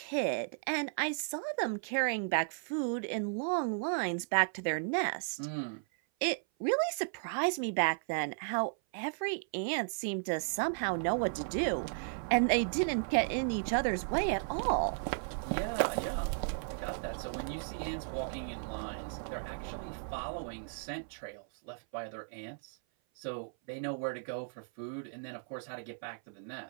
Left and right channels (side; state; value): left; silent; 54 dB below the other